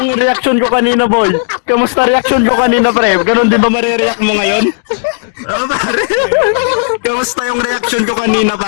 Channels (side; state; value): right; silent; digital silence